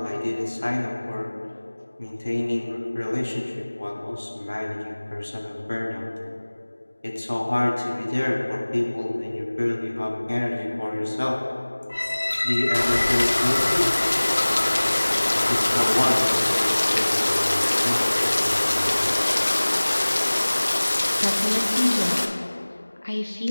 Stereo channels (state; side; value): inverted; both; correlation -1.00